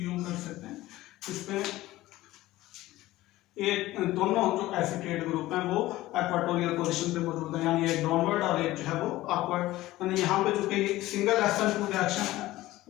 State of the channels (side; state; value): right; quieter; 16.9 dB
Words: यूं कर सकते हैं। इसमें ये दोनों जो एसिटेट ग्रुप हैं वो इक्वाटोरियल पोजीशन पे मौजूद है, यानी एक डाउनवर्ड और एक जो है वो अपवर्ड। यानी यहाँ पे जो कि सिंगल SN2 रिएक्शन है